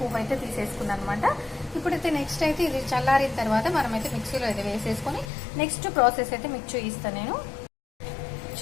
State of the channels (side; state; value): right; drops out; at 5.2 s